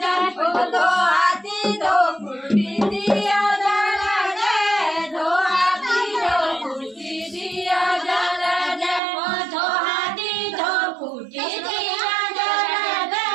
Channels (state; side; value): drops out; left; at 9.0 s